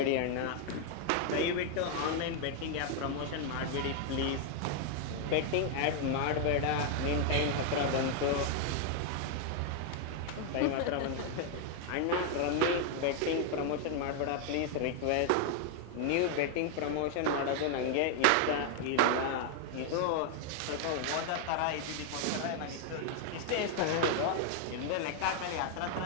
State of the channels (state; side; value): different; both; correlation 0.00